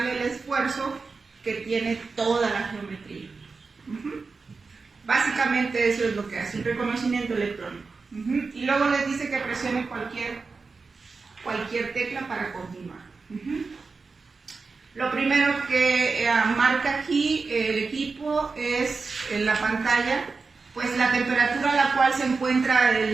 el esfuerzo que tiene toda la geometría. Básicamente eso es lo que hace el reconocimiento electrónico. Y luego les dice que presione cualquier tecla para continuar. Lo primero que marca aquí el equipo es en la pantalla, pues la temperatura a la cual se encuentra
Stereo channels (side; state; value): left; quieter; 4.4 dB